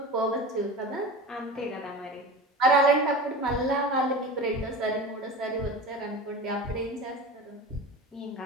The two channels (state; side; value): normal; both; correlation 0.32